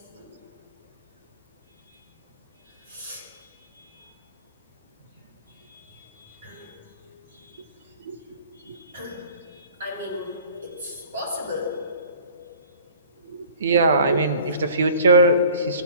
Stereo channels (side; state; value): both; inverted; correlation -0.48